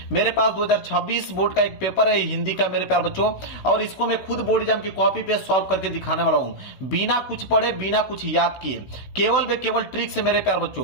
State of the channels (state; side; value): late; right; 16 ms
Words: मेरे पास 2026 बोर्ड का एक पेपर है हिंदी का मेरे प्यार बच्चों, और इसको मैं खुद बोर्ड एग्जाम की कॉपी पे सॉल्व करके दिखाने वाला हूं, बिना कुछ पढ़े बिना कुछ याद किए, केवल ट्रिक से मेरे प्यार